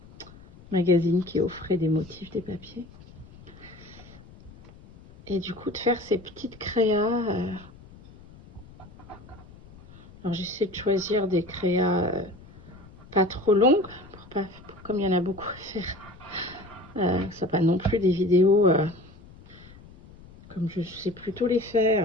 magazine qui offrait des motifs, des papiers. Et du coup, de faire ces petites créas. Alors, j'essaie de choisir des créas pas trop longues, comme il y en a beaucoup à faire. Ça pas non plus des vidéos comme je sais plutôt les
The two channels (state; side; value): noise; left; rumble, 21 dB below the sound